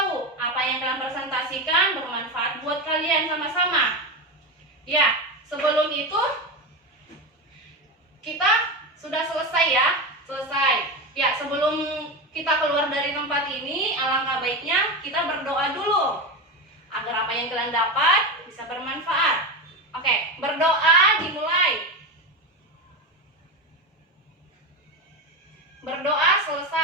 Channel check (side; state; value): both; normal; correlation 0.19